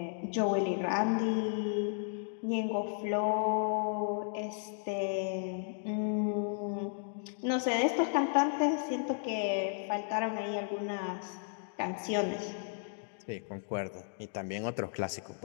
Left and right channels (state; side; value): silent; right; digital silence